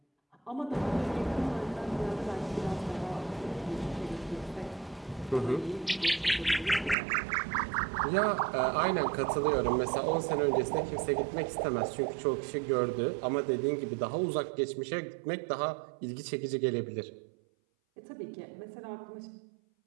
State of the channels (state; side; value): drops out; left; at 7.0 s